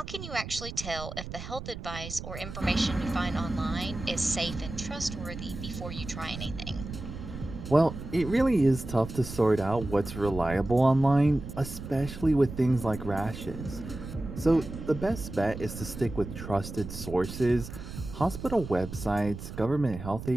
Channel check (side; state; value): right; noise; rumble, 10 dB below the sound